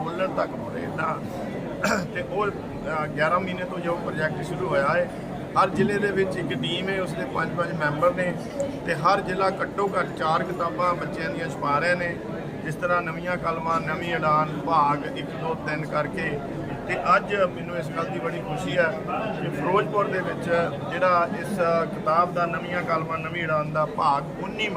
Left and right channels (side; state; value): both; identical; correlation 1.00